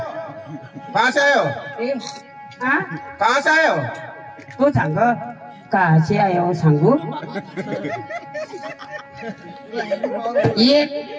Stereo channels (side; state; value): both; identical; correlation 1.00